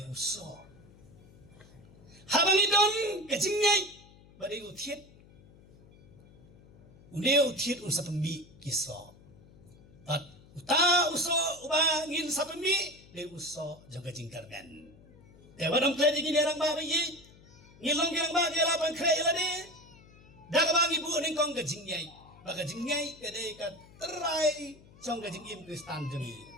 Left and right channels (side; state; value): left; noise; hum, 24 dB below the sound